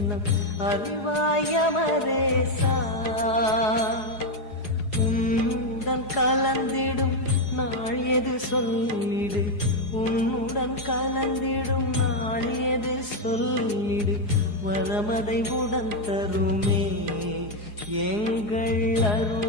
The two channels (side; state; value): right; late; 4.8 ms